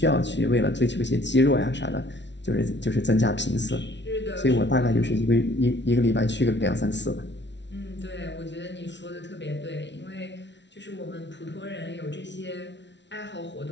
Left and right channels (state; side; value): late; right; 0.51 ms